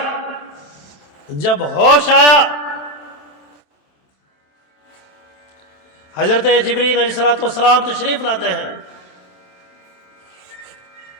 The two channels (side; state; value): right; late; 27 ms